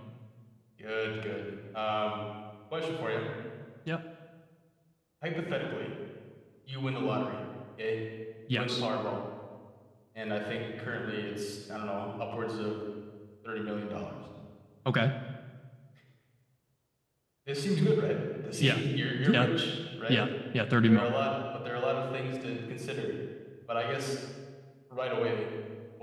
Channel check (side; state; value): both; identical; correlation 1.00